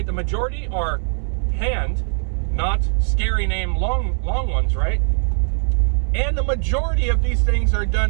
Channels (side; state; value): left; silent; digital silence